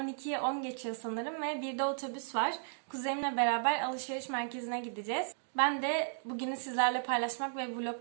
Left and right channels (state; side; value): silent; left; digital silence